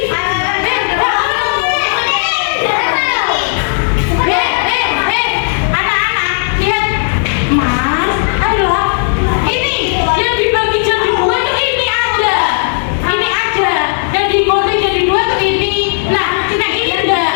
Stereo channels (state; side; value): silent; right; digital silence